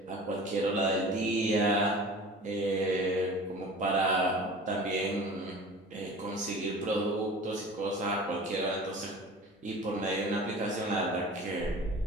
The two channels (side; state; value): both; normal; correlation 0.40